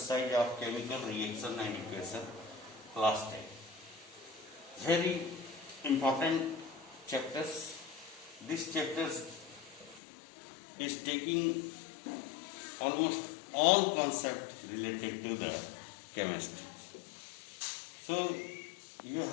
of chemical reaction and equation, class 10. Very important chapters. This chapter is taking almost all concepts related to the chemistry. So you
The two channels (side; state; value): right; drops out; at 10.0 s